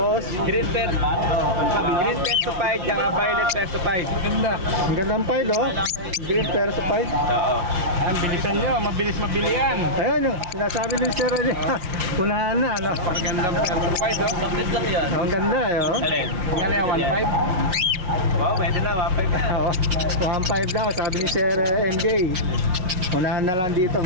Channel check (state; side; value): late; left; 5.6 ms